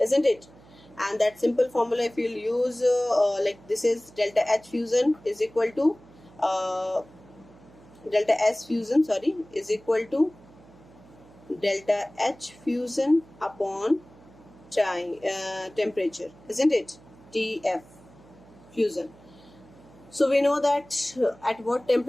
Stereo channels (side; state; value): right; noise; hum, 24 dB below the sound